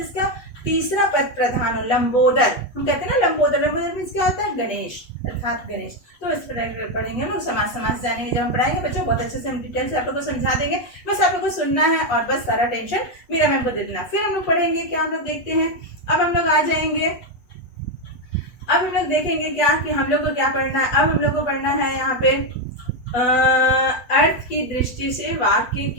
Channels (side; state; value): right; late; 8.2 ms